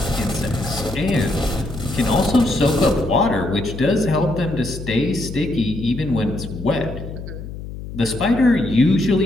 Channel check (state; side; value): noise; left; hum, 10 dB below the sound